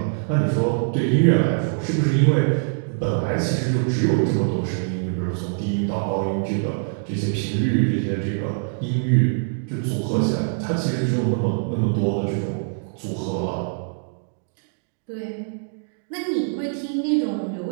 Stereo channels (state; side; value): silent; left; digital silence